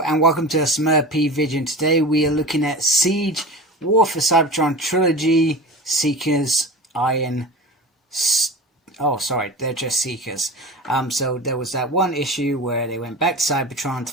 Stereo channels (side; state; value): both; normal; correlation 0.32